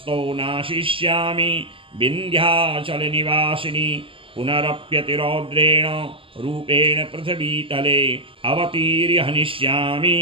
नाशिष्यामि विन्ध्याचलनिवासिनी पुनरप्यतिरौद्रेण रूपेण पृथिवीतले अवतीर्य हनिष्यामि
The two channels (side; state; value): left; late; 0.26 ms